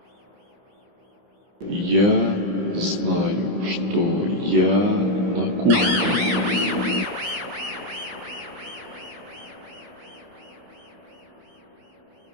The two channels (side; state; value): left; late; 16 ms